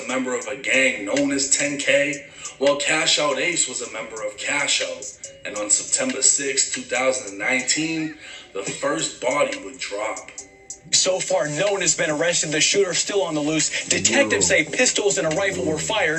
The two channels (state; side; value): identical; both; correlation 1.00